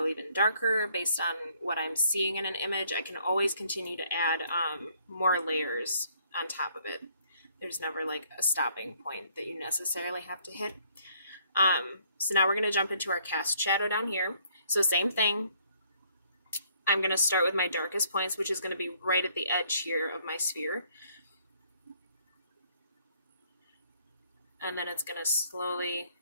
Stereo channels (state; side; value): inverted; both; correlation -0.65